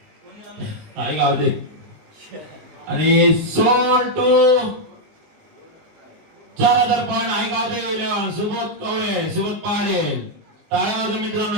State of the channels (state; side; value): late; left; 19 ms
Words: आई गावदेव आणि सोल टू 4000 पॉईंट आई गावदेव 11 सुबोध कवळे सुबोध पाटील. टाळ्या वाजवा